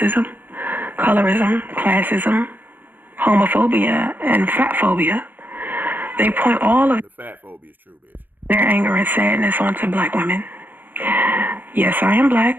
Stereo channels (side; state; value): left; late; 0.088 ms